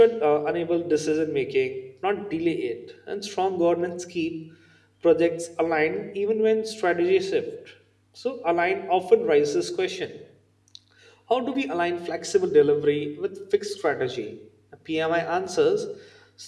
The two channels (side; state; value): both; identical; correlation 1.00